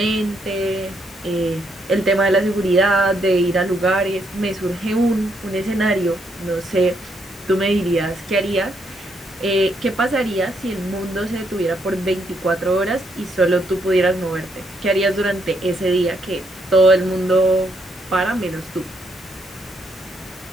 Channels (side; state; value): both; normal; correlation 0.75